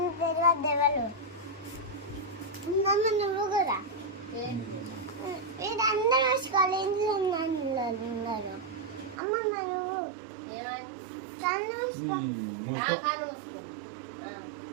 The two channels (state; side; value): drops out; left; at 9.2 s